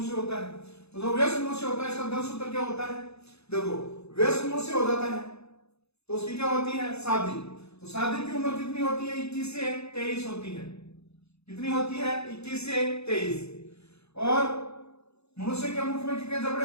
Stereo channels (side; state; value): right; late; 0.79 ms